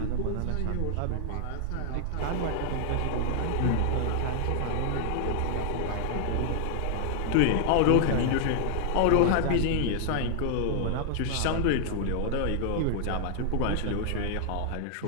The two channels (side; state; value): both; different; correlation 0.00